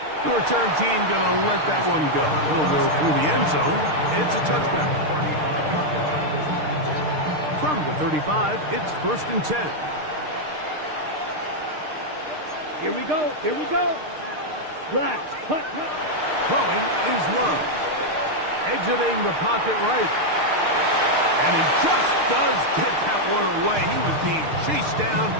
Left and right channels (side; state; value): left; late; 6.6 ms